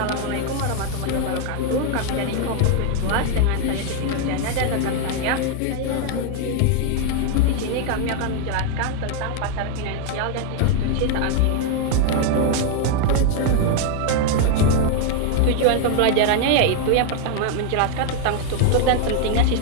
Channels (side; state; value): both; different; correlation 0.00